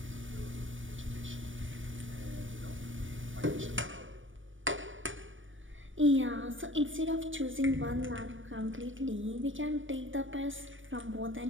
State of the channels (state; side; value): late; left; 0.56 ms